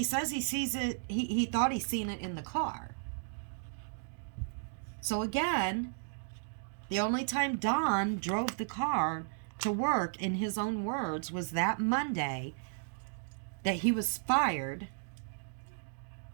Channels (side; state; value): left; silent; digital silence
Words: says he sees it, he thought he seen it in the car. So again, the only time Don drove the car to work, in his own words, was that Monday that he was fired.